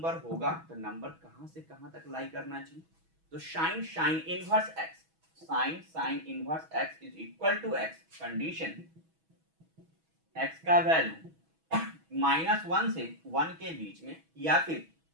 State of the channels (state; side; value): late; left; 6.2 ms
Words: होगा तो नंबर कहां से कहां तक लाई करना चाहिए, तो sine inverse x sine inverse x is equal to x, condition x का वैल्यू -1 से 1 के बीच में या फिर